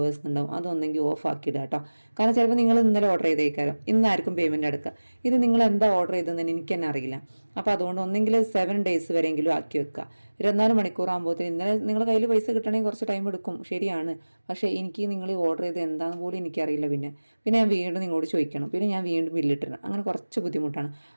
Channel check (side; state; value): both; inverted; correlation -1.00